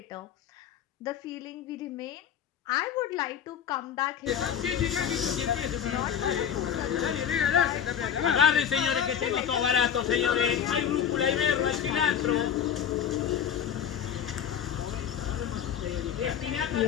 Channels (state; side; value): quieter; right; 8.7 dB